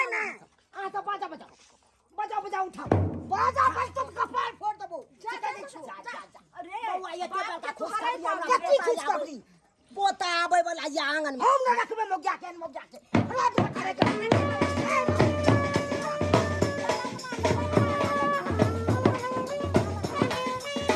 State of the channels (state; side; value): identical; both; correlation 1.00